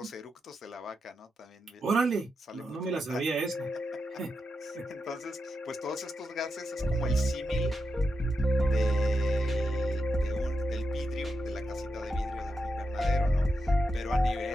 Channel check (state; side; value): normal; both; correlation 0.87